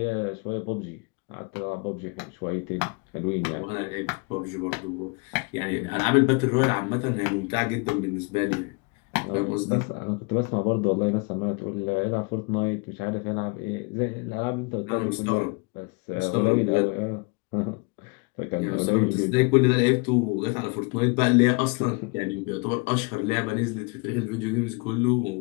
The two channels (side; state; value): right; quieter; 30.0 dB